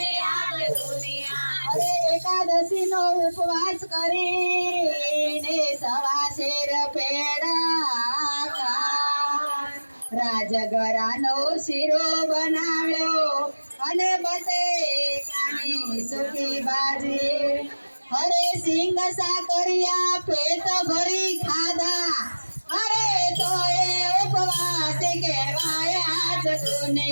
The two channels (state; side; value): inverted; both; correlation -1.00